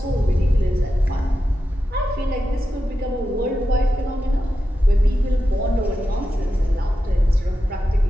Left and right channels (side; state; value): both; normal; correlation 0.90